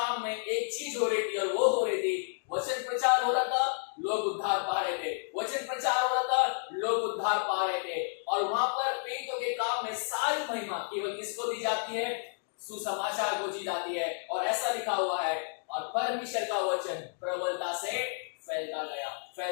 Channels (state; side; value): silent; right; digital silence